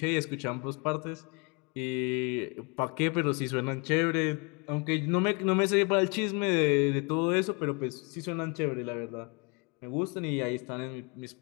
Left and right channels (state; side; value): quieter; right; 31.7 dB